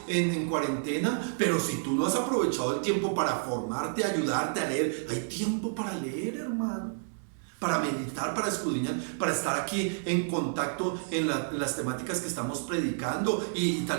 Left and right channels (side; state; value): left; silent; 58 dB below the other